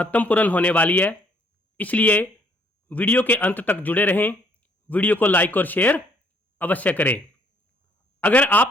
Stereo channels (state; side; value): normal; both; correlation 0.65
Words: होने वाली है, इसलिए वीडियो के अंत तक जुड़े रहें। वीडियो को लाइक और शेयर अवश्य करें। अगर आप